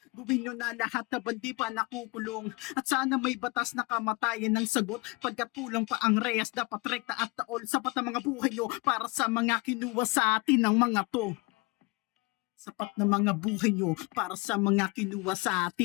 Gawin nyo na lahat na bandi pa nakukulong, at sana may batas na kamatayan ng sagot. Pagkat kulang pa ang reyes, dapat rekta at taol, sapat ang mga buhay nyo para sa mga kinuha sa atin ng mga to. Sapat na mga buhay nyo para sa mga kinuha sa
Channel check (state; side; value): quieter; right; 26.0 dB